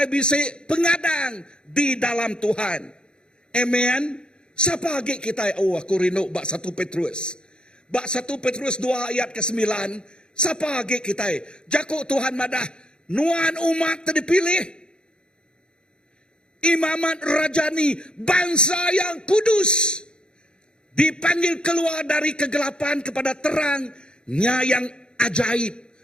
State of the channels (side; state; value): right; late; 0.050 ms